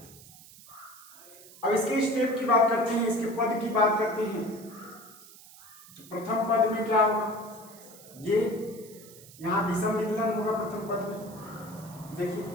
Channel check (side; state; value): right; noise; hiss, 20 dB below the sound